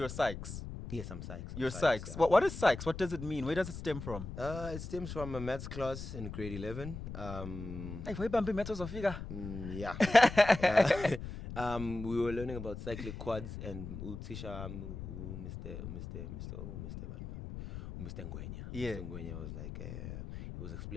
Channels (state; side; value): noise; left; rumble, 9 dB below the sound